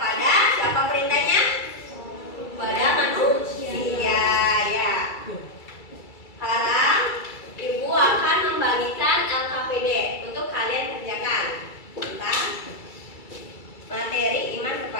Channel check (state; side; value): late; right; 2.3 ms